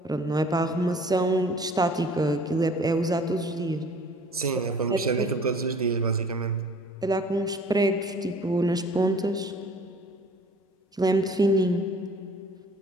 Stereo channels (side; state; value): both; normal; correlation 0.50